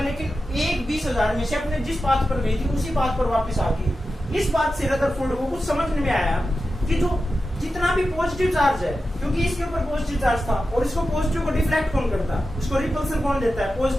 लेकिन एक 20,000 में से अपने जिस पाथ पर गई थी उसी पाथ पर वापस आ गई। इस बात से रदरफोर्ड को कुछ समझ में आया कि जो जितना भी पॉजिटिव चार्ज है, क्योंकि इसके ऊपर पॉजिटिव चार्ज था और इसको पॉजिटिव को डिफ्लेक्ट कौन करता है, उसको रिपल्सन कौन देता है,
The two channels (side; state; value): both; normal; correlation 0.92